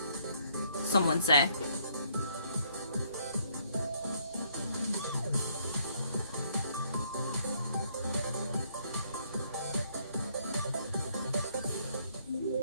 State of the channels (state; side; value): inverted; both; correlation -0.67